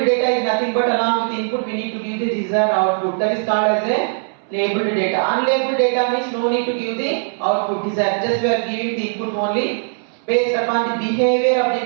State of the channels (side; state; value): left; silent; 65 dB below the other